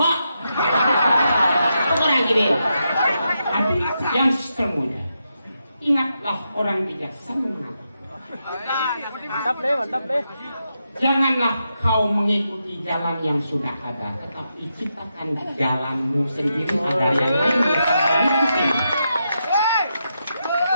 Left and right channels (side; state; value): both; inverted; correlation -0.84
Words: kok. Kurang kiri. Tapi yang semuanya ingatlah orang bijaksana. Mantap deh. Janganlah kau mengikuti jalan yang sudah ada, tetapi ciptakan jalanmu sendiri agar yang lain mengikuti.